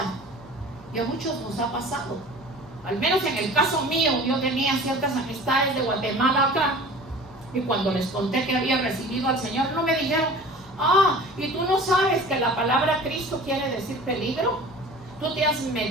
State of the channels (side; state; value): both; normal; correlation 0.42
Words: Y a muchos nos ha pasado. Al menos en el caso mío, yo tenía ciertas amistades de Guatemala acá, y cuando les conté que había recibido al Señor, no me dijeron: ah, ¿y tú no sabes que la palabra Cristo quiere decir peligro? Tú te has